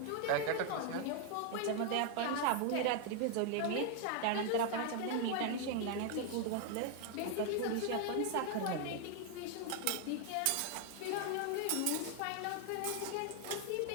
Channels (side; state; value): both; different; correlation 0.00